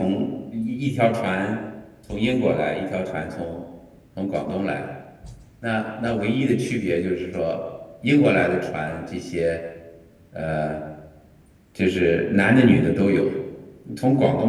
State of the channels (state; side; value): identical; both; correlation 1.00